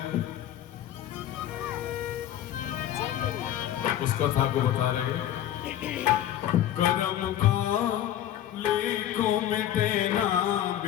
उस कथा को बता रहे। कर्म का लेखो मिटे ना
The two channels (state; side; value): quieter; right; 11.7 dB